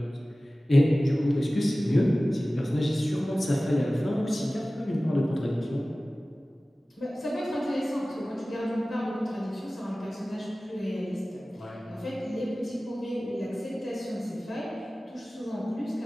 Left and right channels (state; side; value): normal; both; correlation 0.97